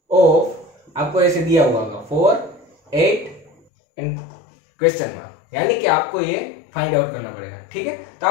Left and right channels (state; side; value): drops out; right; at 3.5 s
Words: ऑफ, आपको ऐसे दिया हुआ होगा 4 8 एंड क्वेश्चन मार्क, यानी कि आपको ये फाइंड आउट करना पड़ेगा, ठीक है। तो